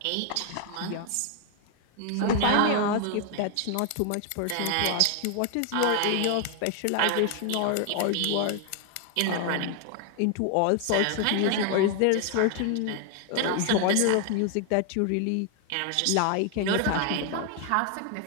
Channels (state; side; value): different; both; correlation 0.00